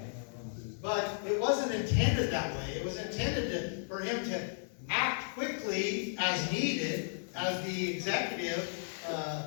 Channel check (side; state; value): right; silent; 55 dB below the other